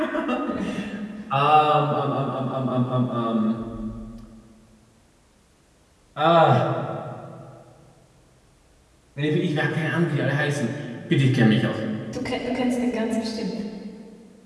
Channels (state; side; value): identical; both; correlation 1.00